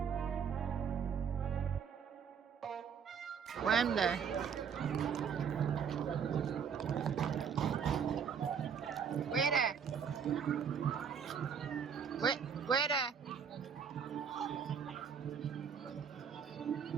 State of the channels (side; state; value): left; quieter; 7.1 dB